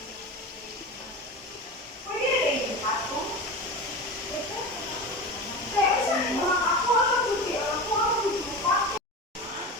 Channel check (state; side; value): normal; both; correlation 0.28